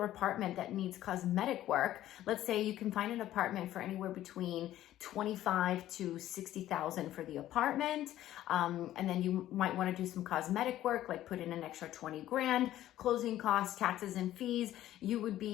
apartment that needs cosmetic work. Let's say you can find an apartment for anywhere between between 25 to 60,000 for the apartment. And then you might want to do some cosmetic work, like put in an extra 20 grand, closing costs, taxes and fees. You would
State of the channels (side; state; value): right; quieter; 13.4 dB